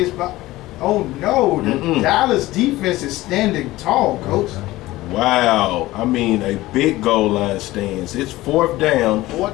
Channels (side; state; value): right; quieter; 17.7 dB